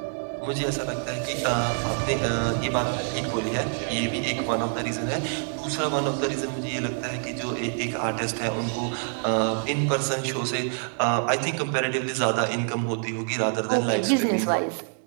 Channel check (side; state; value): left; silent; 61 dB below the other